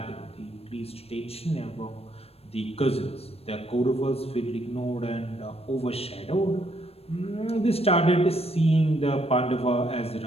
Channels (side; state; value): right; late; 0.29 ms